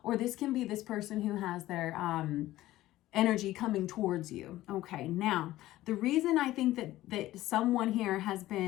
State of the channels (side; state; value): right; quieter; 15.6 dB